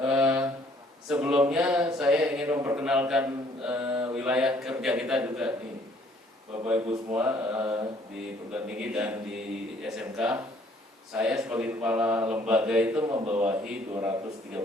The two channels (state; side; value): normal; both; correlation 0.61